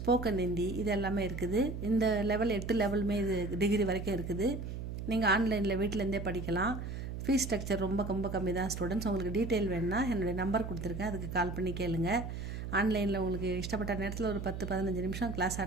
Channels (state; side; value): noise; right; hum, 6 dB below the sound